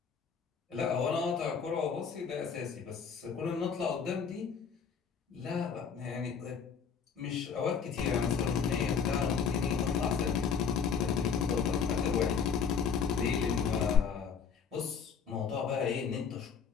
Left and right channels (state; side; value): quieter; right; 6.3 dB